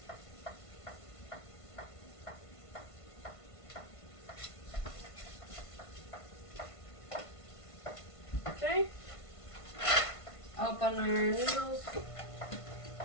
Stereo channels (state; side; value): late; right; 1.5 ms